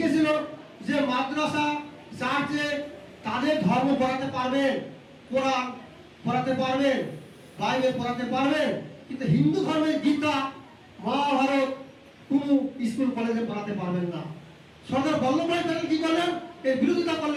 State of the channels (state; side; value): identical; both; correlation 1.00